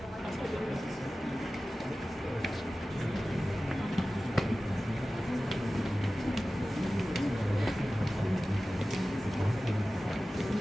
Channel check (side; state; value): both; normal; correlation 0.96